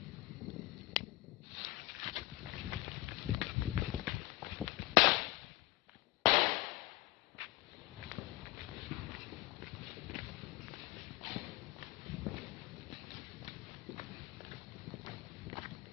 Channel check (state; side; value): quieter; right; 18.9 dB